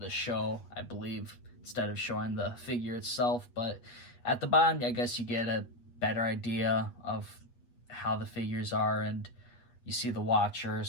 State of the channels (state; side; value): late; right; 8.4 ms